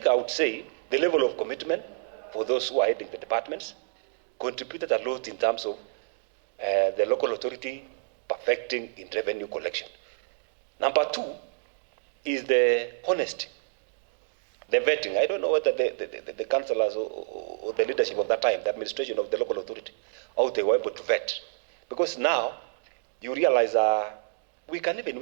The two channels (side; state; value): left; silent; digital silence